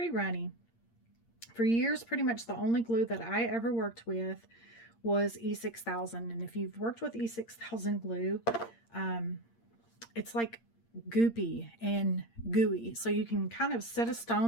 runny. For years, pretty much the only glue that I ever worked with was E6000. And if you've worked with E6000 glue, it's like goopy and gooey. So you can kind of set a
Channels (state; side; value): late; right; 8.7 ms